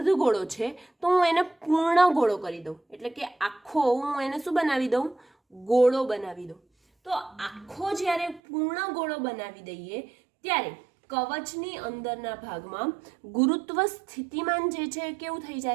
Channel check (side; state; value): left; drops out; at 8.4 s